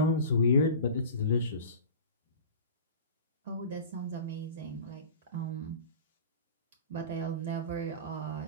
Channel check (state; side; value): inverted; both; correlation -0.35